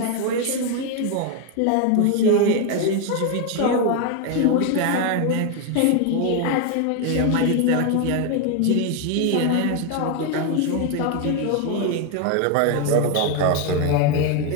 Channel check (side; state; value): both; different; correlation 0.01